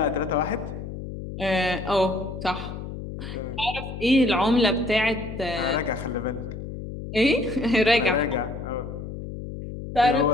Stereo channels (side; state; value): left; noise; hum, 9 dB below the sound